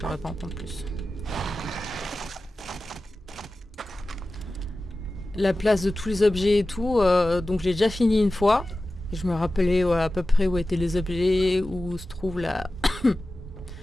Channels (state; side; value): normal; both; correlation 0.95